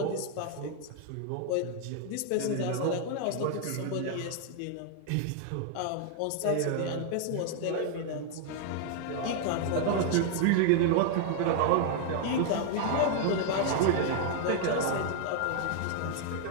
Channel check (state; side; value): different; both; correlation 0.00